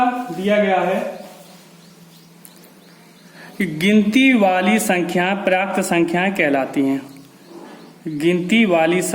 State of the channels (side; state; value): both; identical; correlation 1.00